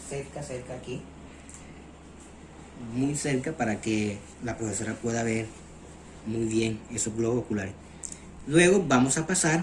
cerca aquí, muy cerca, para que la profesora pueda ver muy bien esos globos oculares. Luego vamos a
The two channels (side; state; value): both; identical; correlation 1.00